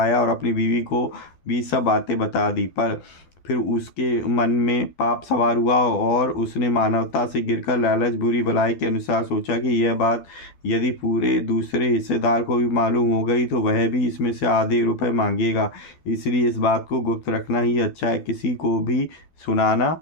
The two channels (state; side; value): late; right; 12 ms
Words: और अपनी बीवी को भी सब बातें बता दी, पर फिर उसके मन में पाप सवार हुआ और उसने मानवता से गिरकर लालच बुरी भलाई के अनुसार सोचा कि यह बात यदि पूरे दूसरे हिस्सेदार को भी मालूम हो गई तो वह भी इसमें से आधे रुपए मांगेगा, इसलिए इस बात को गुप्त रखना ही अच्छा है, किसी को भी सुनाना